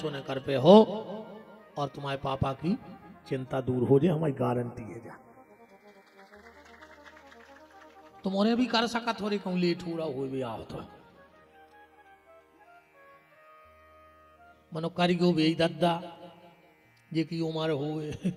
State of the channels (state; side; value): identical; both; correlation 1.00